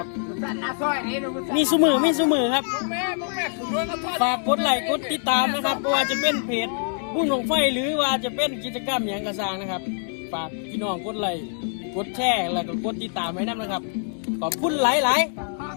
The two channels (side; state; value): right; silent; 62 dB below the other